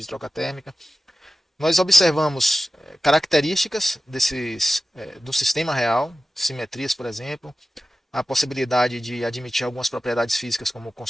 troca térmica. Nós observamos características do sistema real, simetrias, por exemplo, a possibilidade de admitir algumas propriedades físicas como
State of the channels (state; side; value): normal; both; correlation 0.94